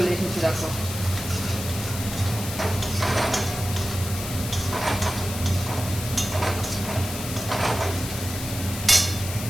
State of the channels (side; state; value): left; noise; hiss, 8 dB below the sound